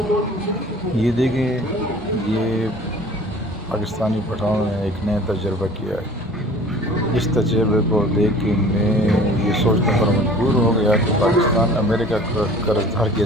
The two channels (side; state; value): both; normal; correlation 0.46